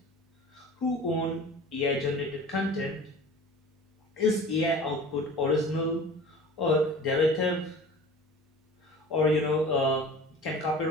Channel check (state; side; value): normal; both; correlation 0.41